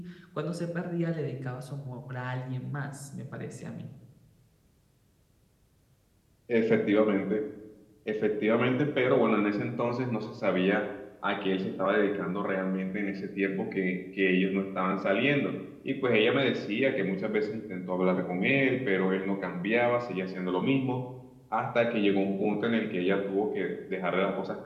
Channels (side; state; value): both; identical; correlation 1.00